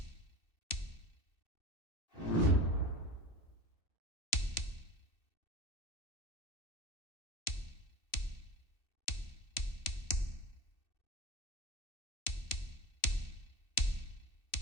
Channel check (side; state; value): right; late; 2.6 ms